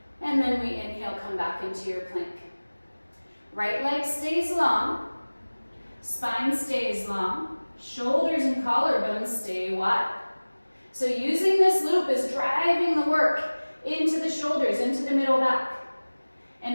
And then we inhale, come back into your plank. Right leg stays long. Spine stays long. Shoulders and collarbones stay wide. So using this loop is driving the work into the shoulders, into the middle back. And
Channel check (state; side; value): inverted; both; correlation -1.00